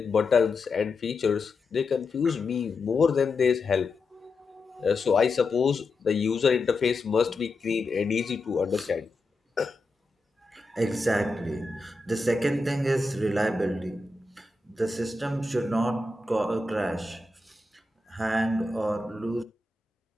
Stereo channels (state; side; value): quieter; right; 3.1 dB